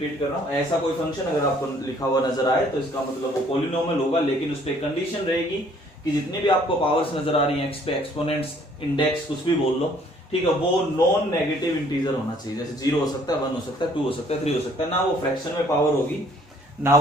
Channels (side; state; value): both; normal; correlation 0.60